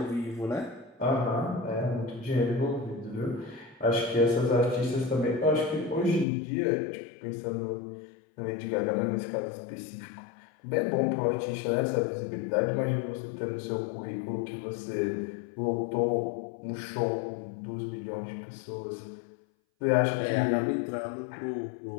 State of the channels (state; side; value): drops out; right; at 6.2 s